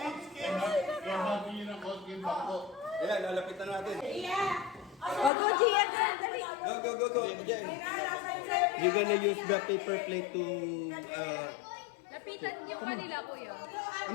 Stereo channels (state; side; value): drops out; right; at 5.3 s